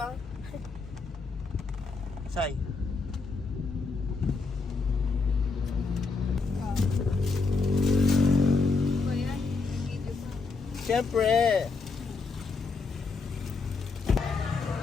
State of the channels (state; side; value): quieter; right; 4.3 dB